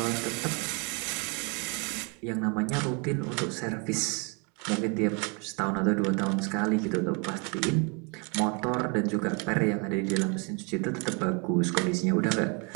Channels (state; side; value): quieter; left; 33.0 dB